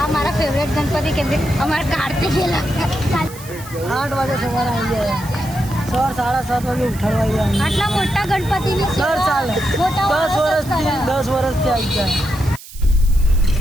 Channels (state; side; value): noise; right; hiss, 17 dB below the sound